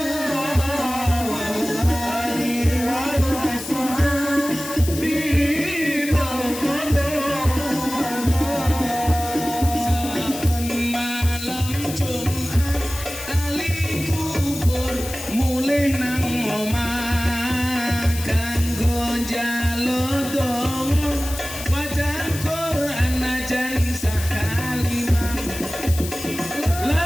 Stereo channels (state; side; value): noise; left; hiss, 10 dB below the sound